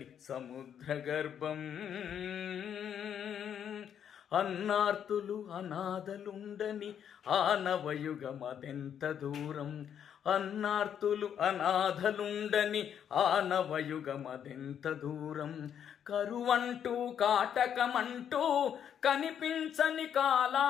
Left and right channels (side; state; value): right; quieter; 8.8 dB